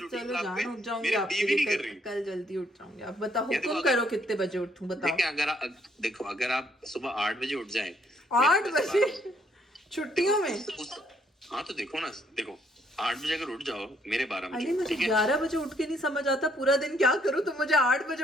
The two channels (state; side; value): normal; both; correlation 0.68